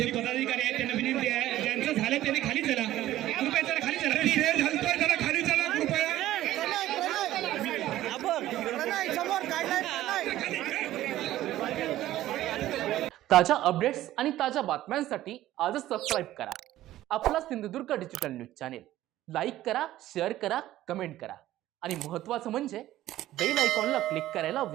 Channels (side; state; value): left; quieter; 14.4 dB